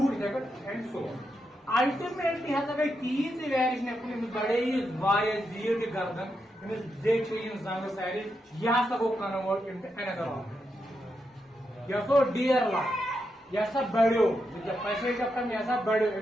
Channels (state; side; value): normal; both; correlation 0.84